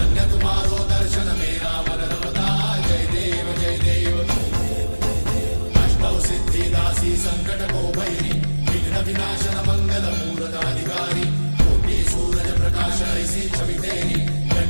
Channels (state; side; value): inverted; both; correlation -1.00